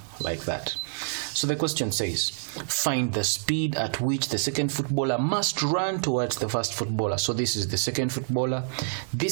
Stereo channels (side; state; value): left; silent; digital silence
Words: like that. So the question says, find the speed at which the second footballer must run towards the first footballer. So this is the second footballer.